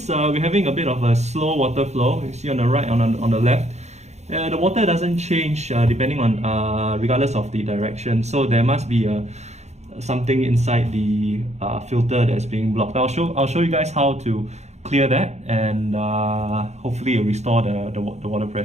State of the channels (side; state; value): left; late; 0.32 ms